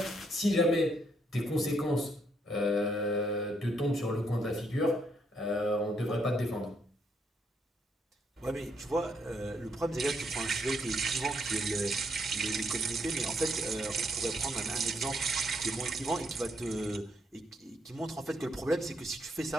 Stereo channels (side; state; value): both; normal; correlation 0.74